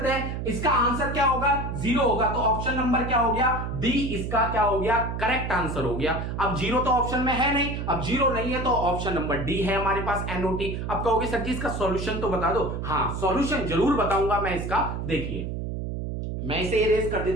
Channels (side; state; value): right; noise; hum, 4 dB below the sound